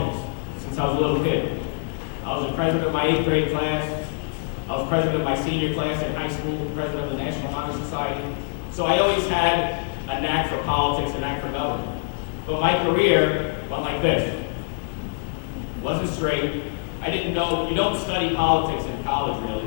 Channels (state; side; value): silent; right; digital silence